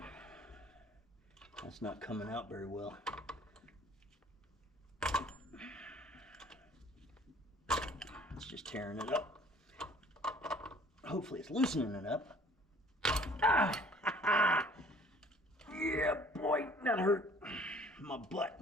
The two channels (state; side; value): normal; both; correlation 0.54